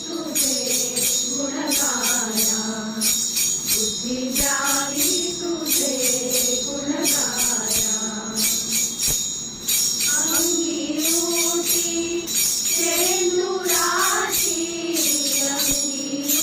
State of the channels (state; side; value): identical; both; correlation 1.00